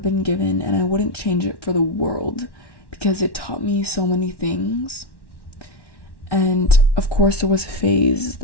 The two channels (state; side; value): late; right; 1.1 ms